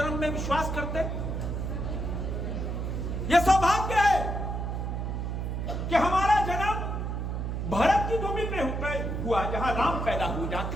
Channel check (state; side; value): noise; right; hum, 2 dB below the sound